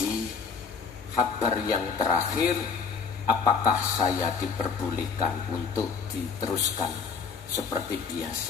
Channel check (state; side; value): quieter; right; 5.6 dB